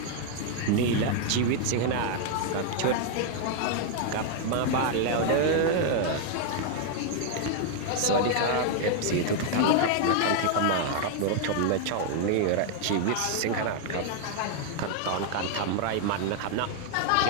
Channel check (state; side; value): different; both; correlation 0.00